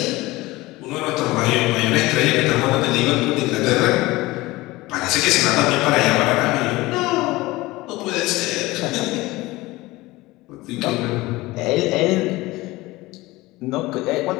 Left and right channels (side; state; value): right; quieter; 20.0 dB